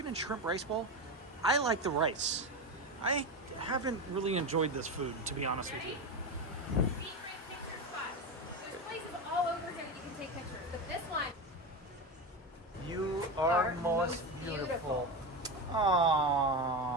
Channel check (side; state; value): both; normal; correlation 0.18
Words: and shrimp rice bowl. I like the rice. I haven't really enjoyed this food, to be honest with you. Secret picture spots. There's places all over here that you can take pictures, but this one. You are most beautiful.